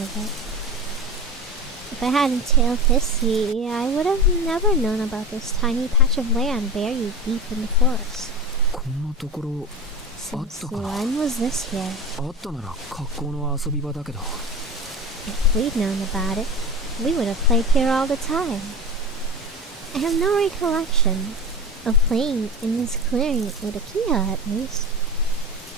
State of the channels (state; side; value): normal; both; correlation 0.28